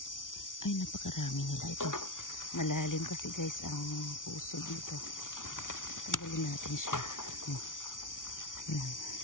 Ay, napakarami nila ito. Malalim kasi guys ang puso dito. Tanggalin natin siya. Ayan.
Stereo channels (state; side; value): late; right; 0.88 ms